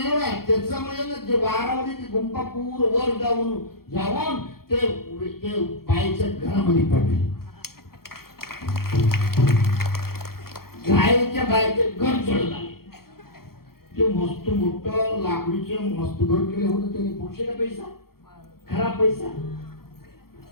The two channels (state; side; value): late; right; 0.94 ms